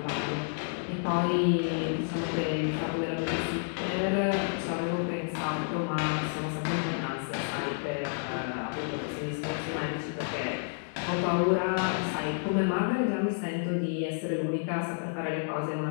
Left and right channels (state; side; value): silent; right; digital silence